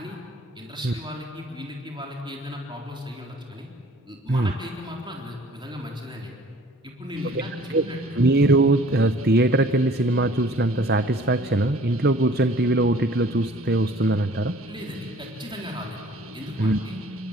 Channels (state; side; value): normal; both; correlation 0.52